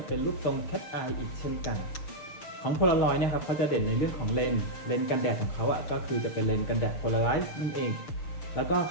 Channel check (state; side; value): late; right; 6.9 ms